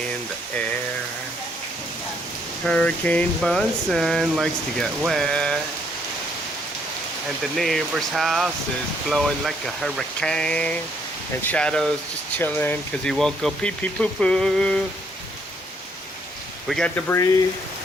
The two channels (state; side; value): normal; both; correlation 0.69